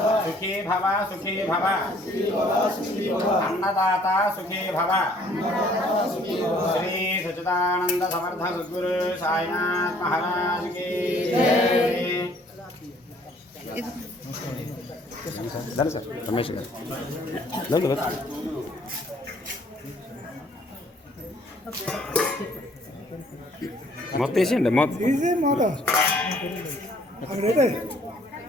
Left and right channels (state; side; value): normal; both; correlation 0.59